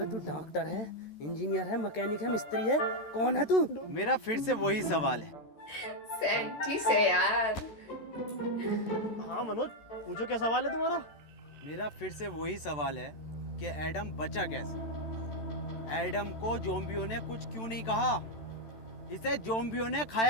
डॉक्टर है, इंजीनियर है, मैकेनिक है, मिस्त्री है, कौन है तू? मेरा फिर से वही सवाल है। सेंटी से यार। हाँ मनोज, पूछो क्या सवाल है तुम्हारा? मेरा फिर से वही सवाल है कि एडम बचा कैसे। एडम को ज़ॉम्बियों ने कुछ क्यों नहीं कहा? इसे ज़ॉम्बियों ने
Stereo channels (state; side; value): late; right; 13 ms